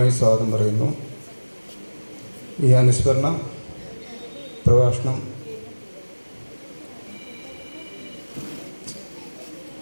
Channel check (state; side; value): inverted; both; correlation -1.00